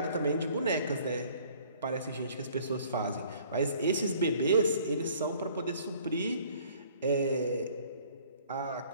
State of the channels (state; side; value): inverted; both; correlation -0.55